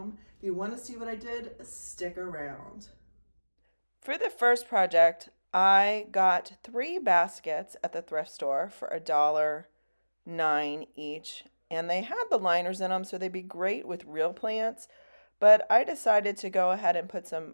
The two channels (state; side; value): inverted; both; correlation -1.00